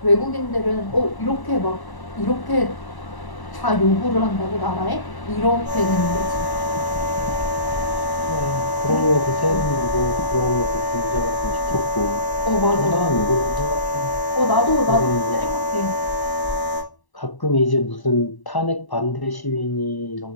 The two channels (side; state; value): right; late; 1.0 ms